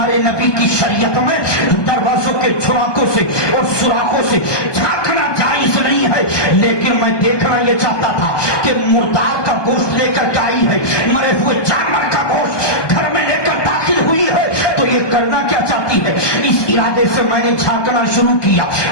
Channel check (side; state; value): right; late; 1.2 ms